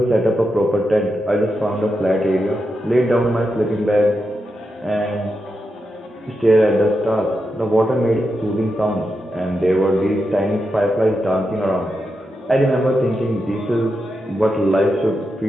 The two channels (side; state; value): both; normal; correlation 0.87